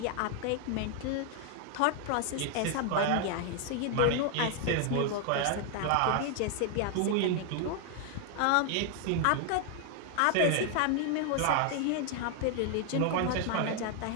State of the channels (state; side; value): different; both; correlation 0.00